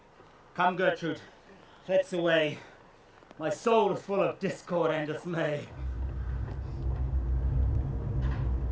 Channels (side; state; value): both; identical; correlation 1.00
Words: Come, Gertrude, let's away. My soul is full of discord and dismay.